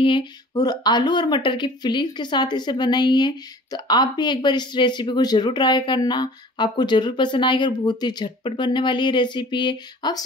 है और आलू और मटर की फिलिंग के साथ इसे बनाई है। तो आप भी एक बार इस रेसिपी को जरूर ट्राई करना, आपको जरूर पसंद आएगी और बहुत ही झटपट बनने वाली ये रेसिपी है। आप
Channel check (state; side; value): normal; both; correlation 0.46